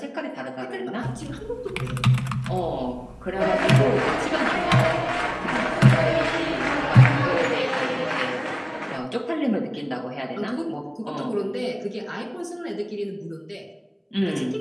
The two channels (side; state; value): both; identical; correlation 1.00